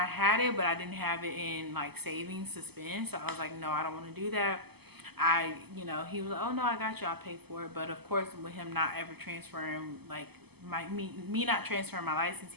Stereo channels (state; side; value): late; left; 0.97 ms